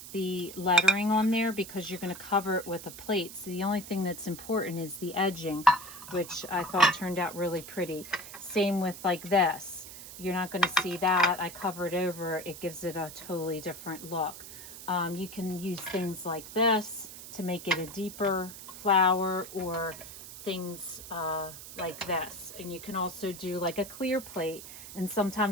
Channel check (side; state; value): right; noise; hiss, 13 dB below the sound